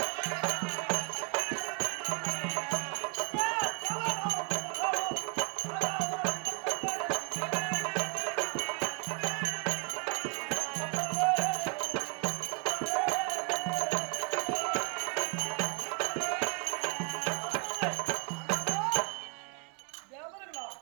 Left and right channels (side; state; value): left; quieter; 34.1 dB